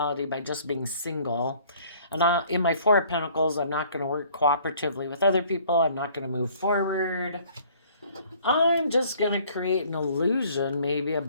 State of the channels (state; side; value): inverted; both; correlation -0.56